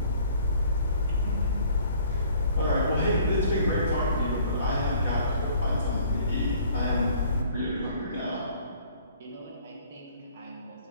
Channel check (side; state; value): both; inverted; correlation -0.55